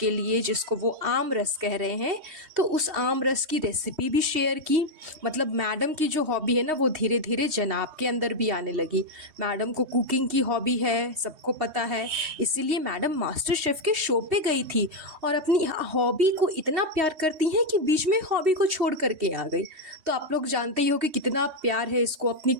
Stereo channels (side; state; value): left; late; 3.2 ms